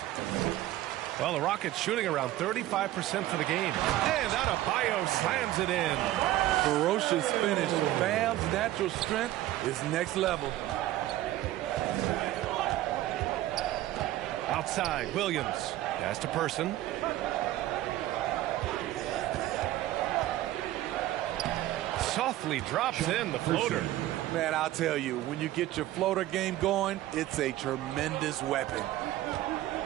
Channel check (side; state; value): left; quieter; 14.9 dB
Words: Well, the Rockets shooting around 35% for the game. And Adebayo slams it in. Ferocious finish. Bam's natural strength is next level. Outside, Williams. Pass to Person. Softly drops in the floater. Man, I'll tell you, when you get your floater game going, it's a tremendous weapon.